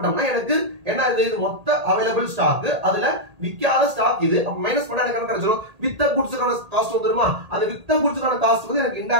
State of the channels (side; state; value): left; late; 1.8 ms